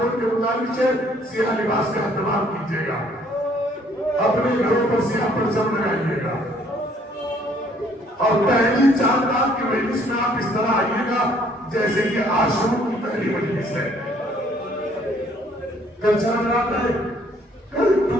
کے گزارش ہے سیاہ لباس کا اہتمام کیجیے گا، اپنے گھروں پر سیاہ پرچم لگائیے گا اور پہلی 4 رات کی مجلس میں آپ اس طرح آئیے گا جیسے کہ عاشور کی پہلی مجلس ہے۔ کل 4 رات ہے، کل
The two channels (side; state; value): both; normal; correlation 0.62